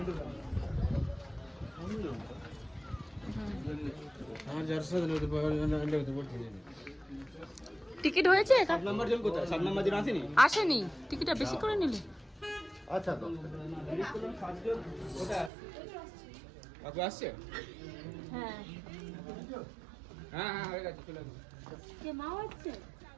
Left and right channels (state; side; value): drops out; left; at 15.5 s